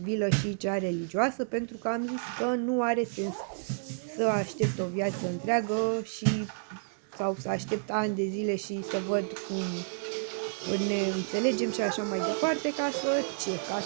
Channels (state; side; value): silent; left; digital silence